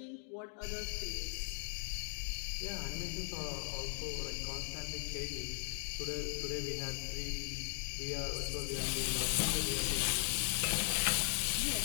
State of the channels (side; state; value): right; silent; 52 dB below the other